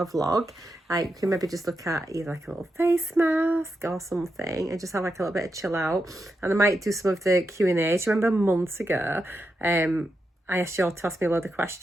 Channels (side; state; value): both; normal; correlation 0.86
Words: vlog. Like you can maybe just look at either like a little face mask or something and just have like a little bit of chill out. And I might do some of the Q&A. Do you remember months ago, I asked you all to ask me a load of